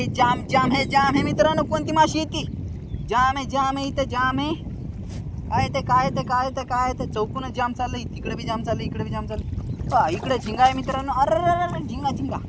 जाम है मित्रांनो. कोणती माशी येते. जाम आहे इथं जाम आहे. काय ते चौकूनच जाम चाललंय. तिकडे बी जाम चाललंय, इकडे बी जाम चाललंय. इकडे झिंगा आहे मित्रांनो. अरे झिंगा इकडे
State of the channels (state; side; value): identical; both; correlation 1.00